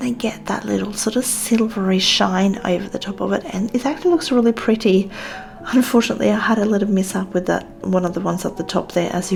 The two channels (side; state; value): both; identical; correlation 1.00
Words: get that little sort of silvery shine over the top of it, and it actually looks really pretty. Unfortunately, I had a little mishap with that one of the ones at the top there, as